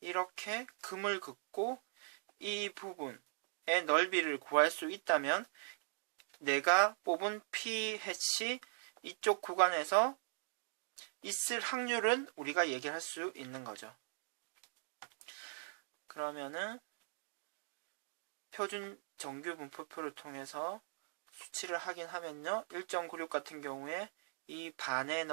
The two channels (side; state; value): left; silent; digital silence